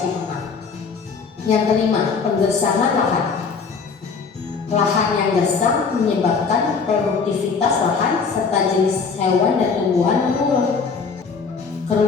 tanah. Yang kelima, penggersangan lahan. Lahan yang gersang menyebabkan produktivitas lahan serta jenis hewan dan tumbuhan menurun.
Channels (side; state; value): right; quieter; 5.2 dB